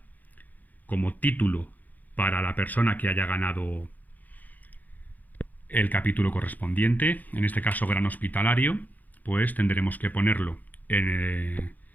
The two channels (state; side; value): late; right; 0.082 ms